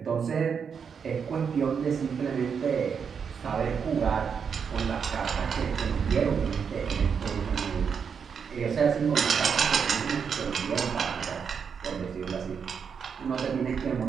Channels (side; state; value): left; quieter; 6.6 dB